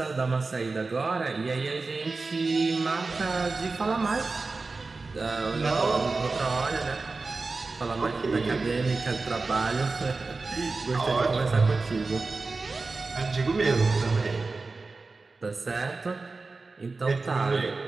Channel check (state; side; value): quieter; left; 3.8 dB